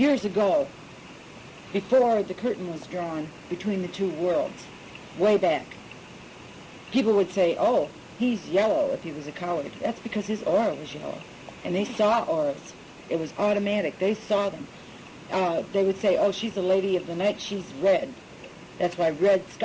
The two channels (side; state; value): both; identical; correlation 1.00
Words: ago, before the curtain was drawn between the two worlds, way back, people would say, oh, he's yellow if he was a coward. That's because his aura was yellow. And they saw auras. It was automatic. They saw them. They would say, oh, she's a lady of the night, she's red. That's why red